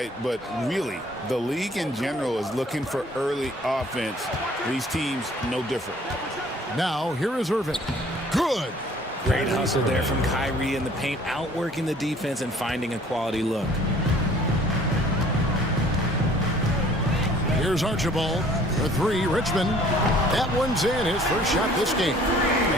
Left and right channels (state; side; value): normal; both; correlation 0.55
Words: But really, the league in general is looking for early offense. These teams, no different. Now, here is Irving. Good. Great hustle there from Kyrie in the paint, outworking the defense and finding a quality look. Here's Archibald for three. Richmond. That one's in. His first shot this game.